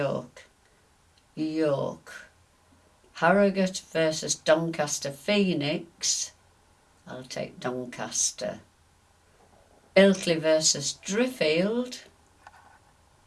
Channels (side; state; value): both; identical; correlation 1.00